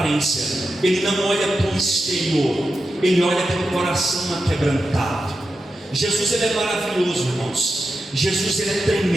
ele não olha para o exterior, ele olha para o coração aquebrantado. Jesus, ele é maravilhoso, irmãos. Jesus, ele é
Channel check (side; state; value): both; normal; correlation 0.89